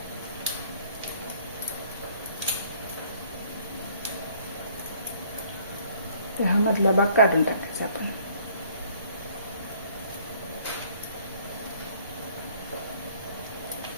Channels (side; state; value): both; inverted; correlation -0.59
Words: हा मधला भाग काढून टाकायचा आपण.